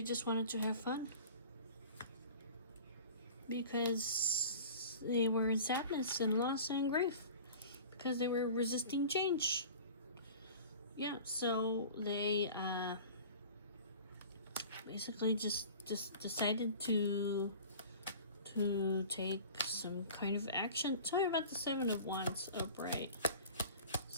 just wanted to have fun. Because they were in sadness and loss and grief. Because they were resisting change. Yeah, so they basically just decided to take some kind of action. Tell me about the Seven of Wands upright.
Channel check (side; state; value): both; inverted; correlation -0.41